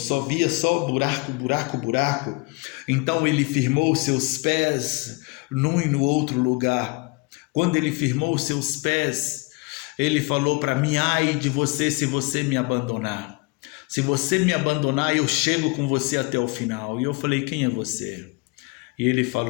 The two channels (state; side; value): quieter; right; 27.0 dB